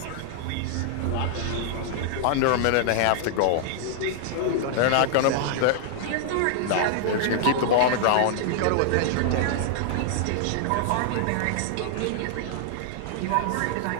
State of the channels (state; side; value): different; both; correlation -0.01